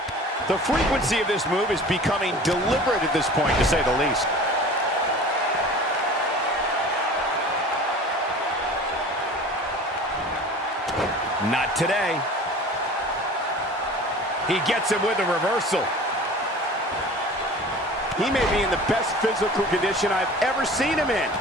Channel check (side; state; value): both; normal; correlation 0.41